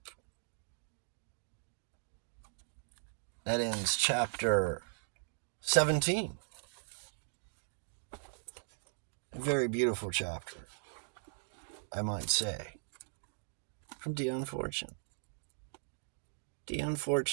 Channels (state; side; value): silent; left; digital silence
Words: That ends chapter 17. A very beautiful chapter, I might say, from Dion Fortune. Dion